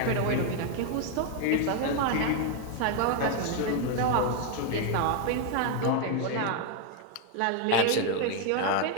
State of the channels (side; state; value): both; different; correlation 0.01